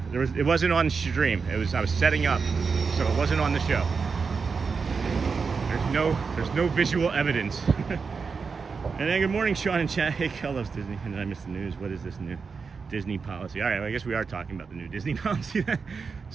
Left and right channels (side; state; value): left; quieter; 5.2 dB